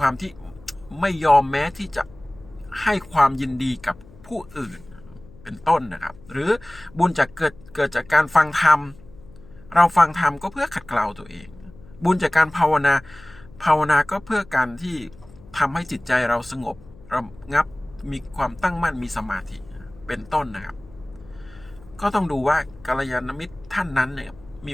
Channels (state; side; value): noise; left; hum, 23 dB below the sound